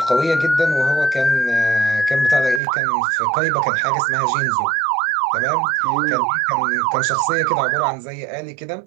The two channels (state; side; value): drops out; left; at 2.6 s